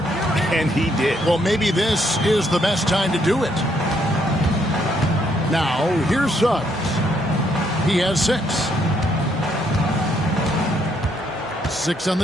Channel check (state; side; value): normal; both; correlation 0.72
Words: and he did. Well, maybe this is the best time to do it. Now, here's Suggs. He has 6. 6 on